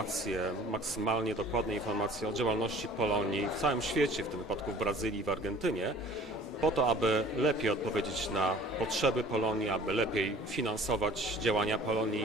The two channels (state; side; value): normal; both; correlation 0.49